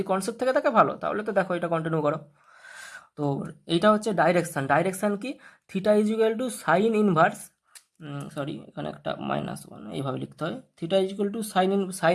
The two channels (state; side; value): identical; both; correlation 1.00